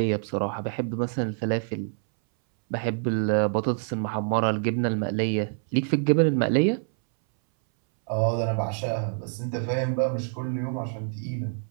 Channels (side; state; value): left; silent; 61 dB below the other